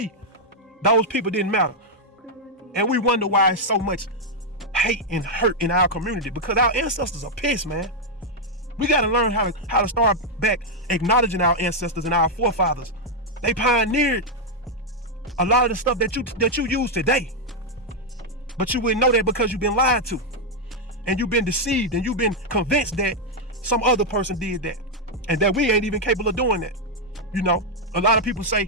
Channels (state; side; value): normal; both; correlation 0.00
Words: those people didn't matter? And we wonder why it's so much hate and hurt in our community, because our ancestors are pissed, man. We got to learn how to start back acknowledging our ancestors and our forefathers. They pioneered a lot of the stuff that you use today, but you wouldn't know that because you've been lied to, and you've been deceived, and you've been convinced that some other person did that, and that we ain't even capable of doing that. A lot of people say,